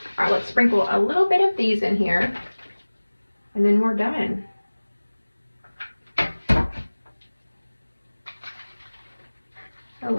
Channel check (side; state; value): both; inverted; correlation -1.00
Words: right, let's sprinkle a little bit of these in here and then we're done. I